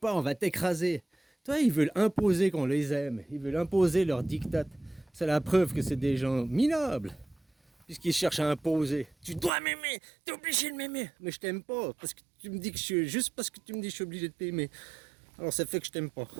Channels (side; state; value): left; drops out; at 9.5 s